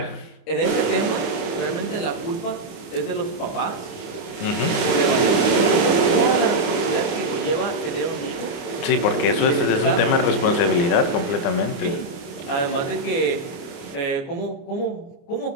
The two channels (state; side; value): late; right; 29 ms